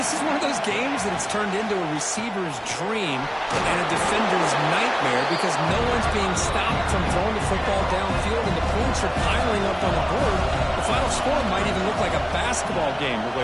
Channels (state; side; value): identical; both; correlation 1.00